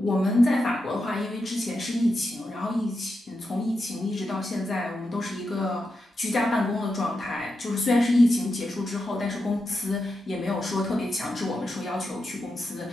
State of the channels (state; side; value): normal; both; correlation 0.87